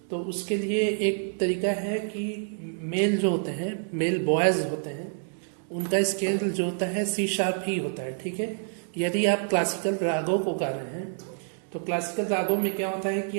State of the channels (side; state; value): left; silent; digital silence